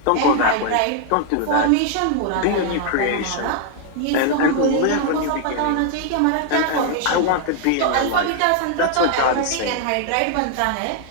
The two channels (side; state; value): both; different; correlation 0.00